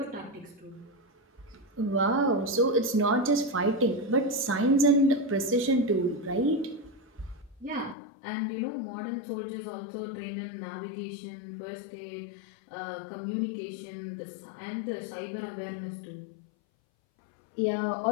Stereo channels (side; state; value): right; drops out; at 8.0 s